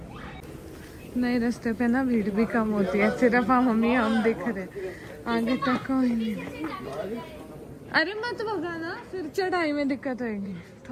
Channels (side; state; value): both; identical; correlation 1.00